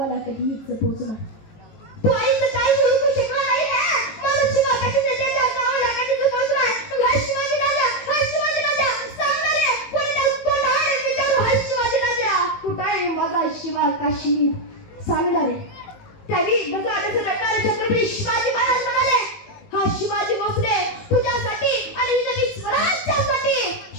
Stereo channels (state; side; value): late; right; 19 ms